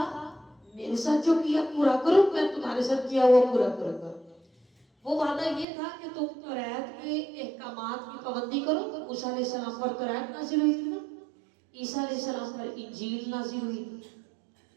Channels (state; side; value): drops out; left; at 5.7 s